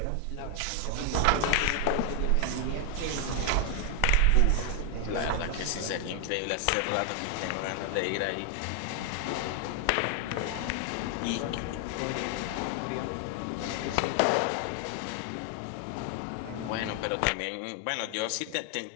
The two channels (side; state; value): both; different; correlation 0.01